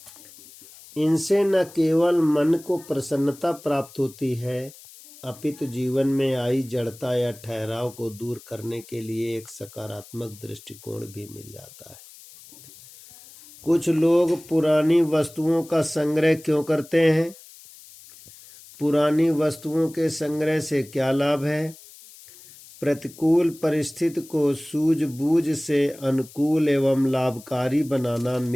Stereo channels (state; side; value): noise; left; hiss, 21 dB below the sound